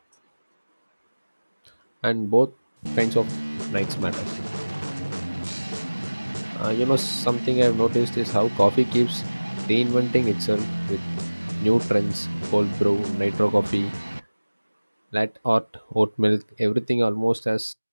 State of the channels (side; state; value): both; inverted; correlation -1.00